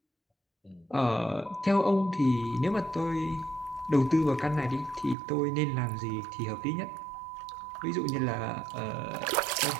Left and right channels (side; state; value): left; drops out; at 5.2 s